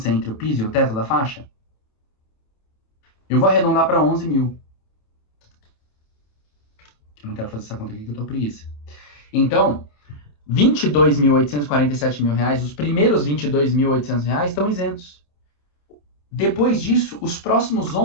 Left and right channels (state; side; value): late; right; 28 ms